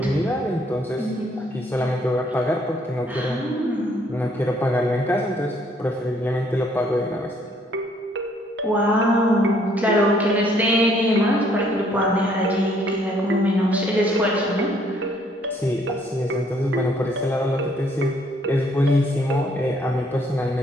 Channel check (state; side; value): normal; both; correlation 0.65